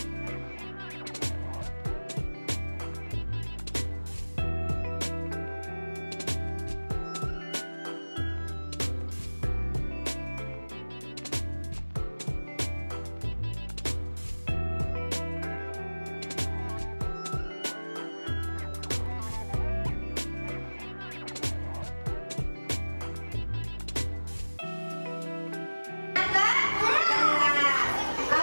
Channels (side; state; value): both; inverted; correlation -1.00